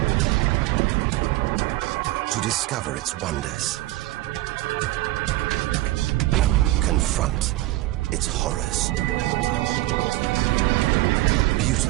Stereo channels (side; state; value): left; quieter; 17.7 dB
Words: to discover its wonders, confront its horrors.